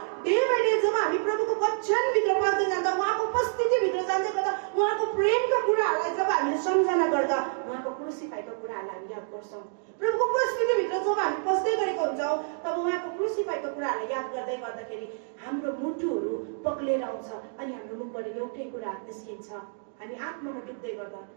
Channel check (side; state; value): left; silent; digital silence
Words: डे बाई डे जब हामी प्रभुको वचनभित्र पस्दै जाँदा, उहाँको उपस्थितिभित्र जाँदै गर्दा, उहाँको प्रेमका कुराहरूलाई जब हामीले सम्झना गर्दा उहाँको क्रुसिफाईको कुराहरूलाई हामी याद गर्छौँ। प्रभुको उपस्थितिभित्र जब हामी पस्दै गरेको हुन्छौँ तब उहाँको क्रुसिफाईको कुराहरूलाई याद गर्दै गर्दाखेरि हाम्रो मुटुहरू पक्लेर आउँछ अनि हाम्रो मुखबाट एउटै कुरा निस्किन्छ, हामी आत्मामा डुब्दै गर्दा